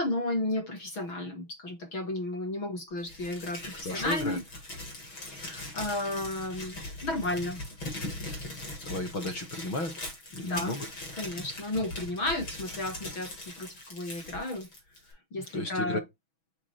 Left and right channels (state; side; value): late; right; 6.2 ms